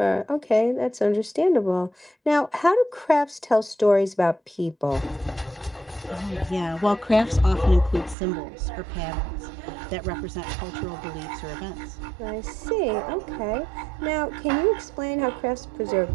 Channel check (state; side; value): drops out; left; at 8.2 s